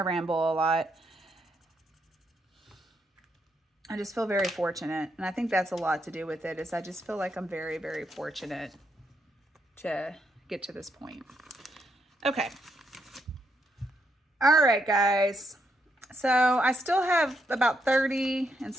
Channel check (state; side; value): normal; both; correlation 0.78